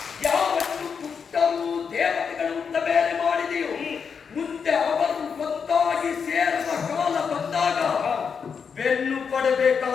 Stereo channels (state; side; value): quieter; right; 6.3 dB